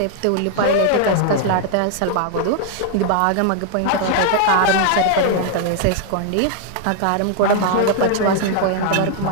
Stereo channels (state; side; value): different; both; correlation 0.00